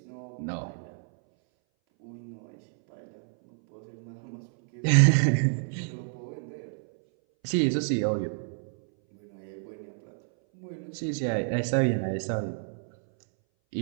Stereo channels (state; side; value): silent; left; 58 dB below the other